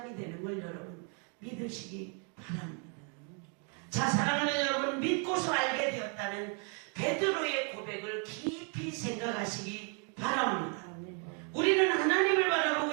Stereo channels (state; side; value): quieter; left; 38.6 dB